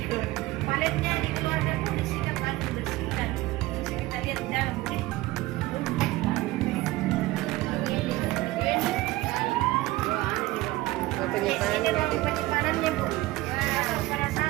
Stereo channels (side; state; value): left; quieter; 18.5 dB